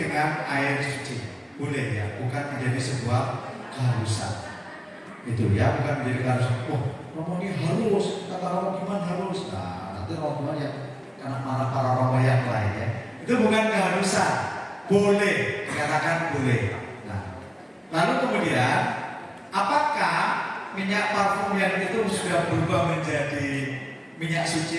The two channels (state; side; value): identical; both; correlation 1.00